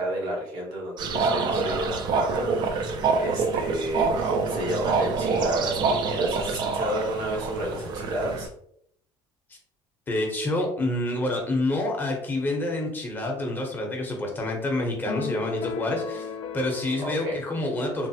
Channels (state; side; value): normal; both; correlation 0.49